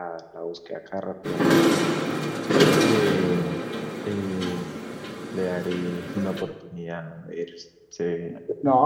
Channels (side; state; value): both; identical; correlation 1.00